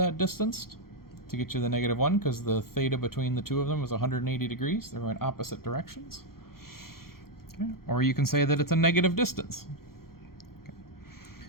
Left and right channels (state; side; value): late; right; 0.93 ms